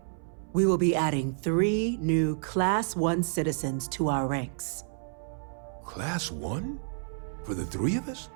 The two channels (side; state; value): left; silent; 58 dB below the other